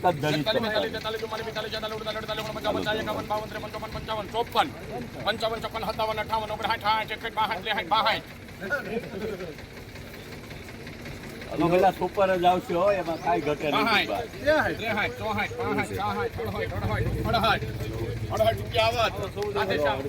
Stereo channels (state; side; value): identical; both; correlation 1.00